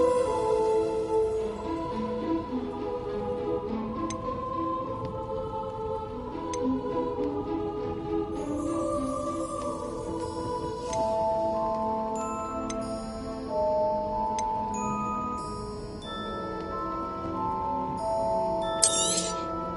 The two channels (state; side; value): identical; both; correlation 1.00